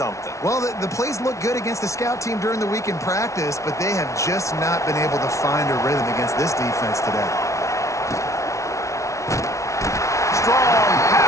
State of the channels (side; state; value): right; late; 0.14 ms